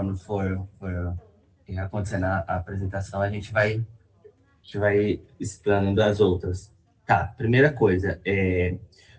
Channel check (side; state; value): both; identical; correlation 1.00